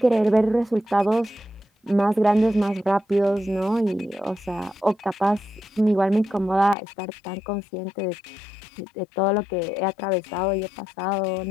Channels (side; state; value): right; drops out; at 6.8 s